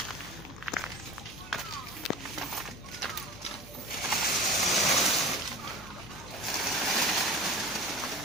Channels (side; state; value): right; noise; hum, 18 dB below the sound